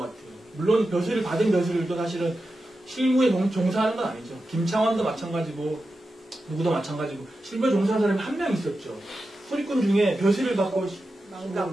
물론 벼슬을 받은 벼슬도 사실은 실무에 종사하는 건 아니죠. 김창완도 마찬가지고 누구도 마찬가지고 실무에 종사하는 사람이 한 명 있었죠. 소리꾼 중에 벼슬을 받고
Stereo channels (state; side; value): normal; both; correlation 0.91